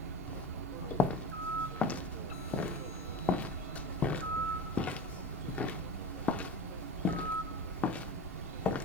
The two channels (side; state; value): both; normal; correlation 0.31